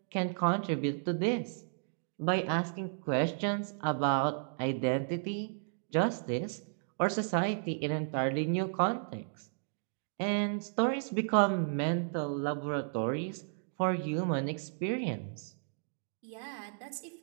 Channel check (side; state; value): left; silent; digital silence